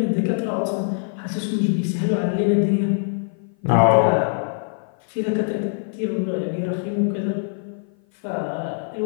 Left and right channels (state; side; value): silent; right; 55 dB below the other